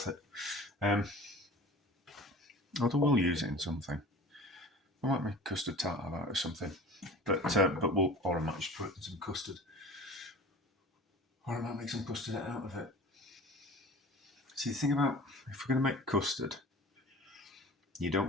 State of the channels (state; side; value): normal; both; correlation 0.40